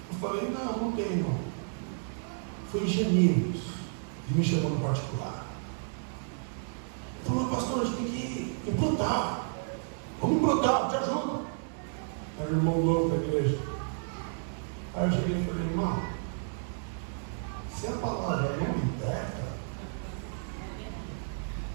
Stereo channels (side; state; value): left; silent; digital silence